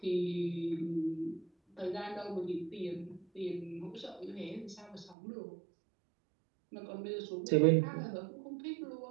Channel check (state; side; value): drops out; left; at 5.2 s